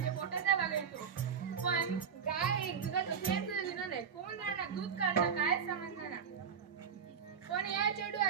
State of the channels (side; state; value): left; quieter; 7.0 dB